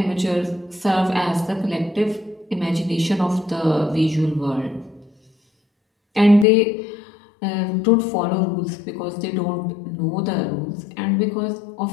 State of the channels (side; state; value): right; drops out; at 6.5 s